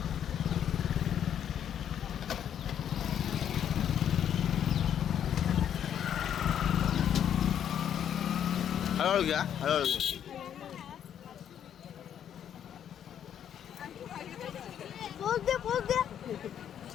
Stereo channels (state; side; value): quieter; right; 9.4 dB